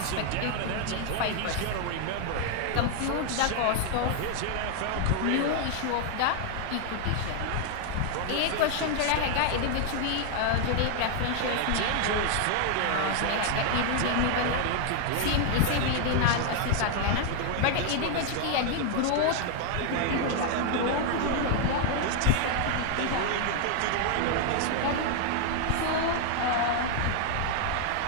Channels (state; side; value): different; both; correlation 0.00